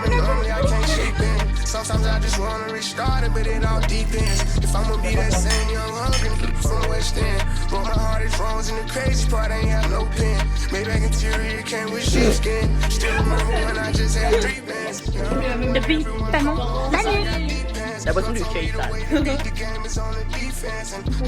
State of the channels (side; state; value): both; identical; correlation 1.00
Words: Sometimes I just wanna restart it, but it all depends. If I'ma be that same young hungry from West End, but my heart is frozen. The crazy part ain't have no pen. Maybach interior came with sheepskin. Still remember when I just had 3 bands. Depuis tellement d'années. La boisson du cake. Il